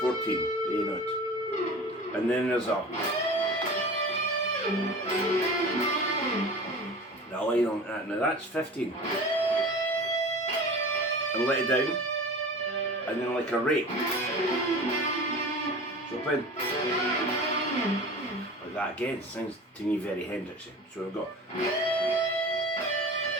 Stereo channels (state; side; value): normal; both; correlation 0.37